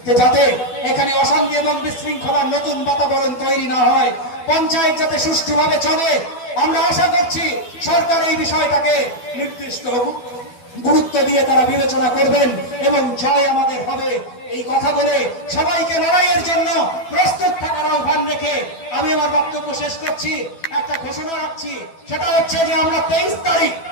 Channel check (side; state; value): right; late; 12 ms